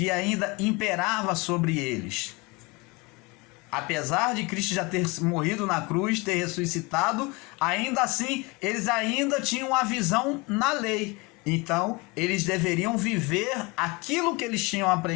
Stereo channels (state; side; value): quieter; right; 26.2 dB